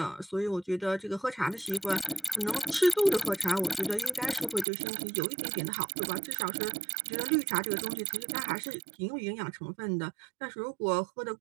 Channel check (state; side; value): drops out; left; at 4.7 s